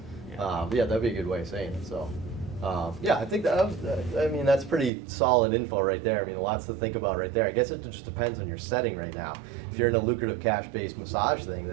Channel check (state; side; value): drops out; left; at 4.9 s